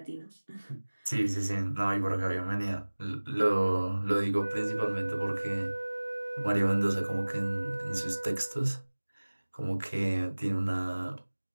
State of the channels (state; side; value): inverted; both; correlation -1.00